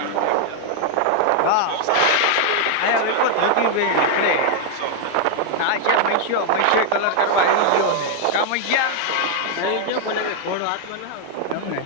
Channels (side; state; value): both; different; correlation 0.00